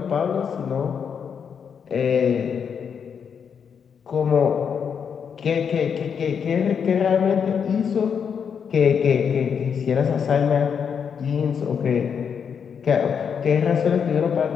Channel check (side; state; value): right; quieter; 7.0 dB